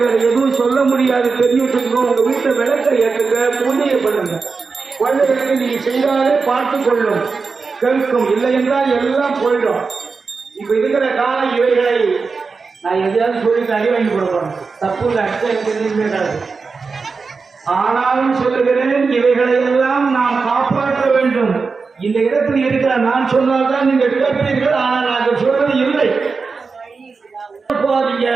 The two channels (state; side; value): quieter; left; 4.7 dB